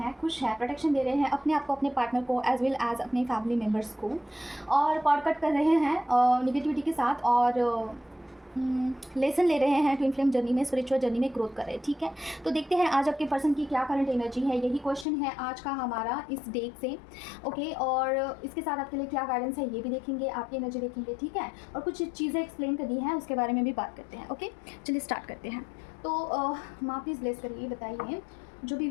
खुश हैं, प्रोटेक्शन दे रहे हैं अपने आप को, अपने पार्टनर को, एज वेल एज अपने फैमिली मेम्बर्स को, और कॉर्ड कट कर रहे हैं निगेटिविटी के साथ और लेसन ले रहे हैं ट्विन फ्लेम जर्नी में, स्पिरिचुअल जर्नी में ग्रोथ कर रहे हैं। ठीक है, तो देखते हैं आज आपके पर्सन की क्या करंट एनर्जी है। यही क्वेश्चन है आज का हमारा इस डेट से। ओके, और इसके साथ आपके लिए क्या गाइडेंस है ये भी देखेंगे, आपकी एनर्जी देखेंगे। ठीक है, और कुछ चीज़ें एक्सप्लेन करनी है उसके बारे में भी बात करते हैं। ओके, चलिए स्टार्ट करते हैं। तो माँ प्लीज़ ब्लेस करिए, बताइए जो भी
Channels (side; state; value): right; drops out; at 15.1 s